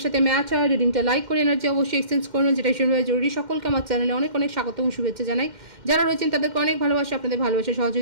সাথে ম্যাচ হয়, রিডিংটা লাইক করে এনার্জি অবশ্যই এক্সচেঞ্জ করুন, যেটা ভীষণভাবে জরুরি। সকলকে আমার চ্যানেলে অনেক অনেক স্বাগত এবং শুভেচ্ছা জানাই। যারা রয়েছেন তাদেরকে অনেক ভালোবাসা, আপনাদের ভালোবাসা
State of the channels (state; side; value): late; left; 2.1 ms